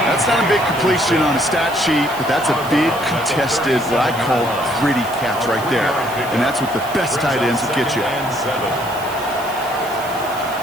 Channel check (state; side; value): noise; right; hiss, 16 dB below the sound